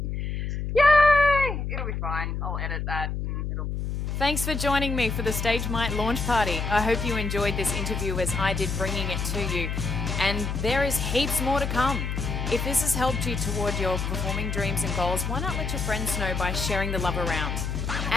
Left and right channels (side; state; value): left; noise; hum, 3 dB below the sound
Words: Yay! It'll be fine. I'll edit that. Thanks for joining me for the Stage Might launch party. I hope you enjoyed this interview as I did, bringing it to you. And there is heaps more to come. If this has helped you toward your performing dreams and goals, why not let your friends know by sharing the love around?